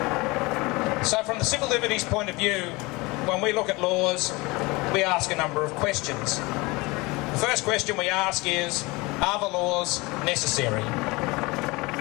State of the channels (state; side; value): quieter; right; 24.0 dB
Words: So from the civil liberties point of view, when we look at laws, we ask a number of questions. The first question we ask is, are the laws necessary?